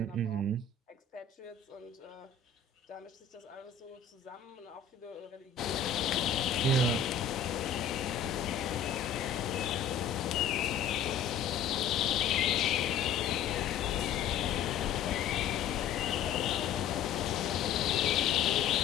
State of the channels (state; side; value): quieter; right; 7.0 dB